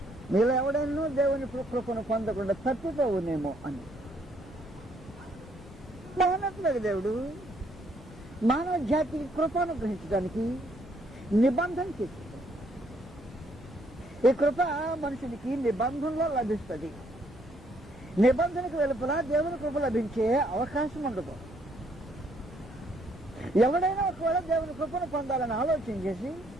మీలో ఎవడైనా దేవుని కృపను పొందకుండా తప్పిపోవునేమో అని మానట్లేదు. దేవుడు మానవ జాతికి కృపను గ్రహించడానికి నిబంధన చేశాడు. ఈ కృప మనుషునికి నిబంధనలో లభిస్తుంది. నిబంధనకు వెలుపల దేవుని కృప లభించే అవకాశం ఉండదు. ఎవడైనా ఒకవేళ దేవుని కృపను పొందాలని ఆలోచన చేసి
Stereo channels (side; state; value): both; normal; correlation 0.69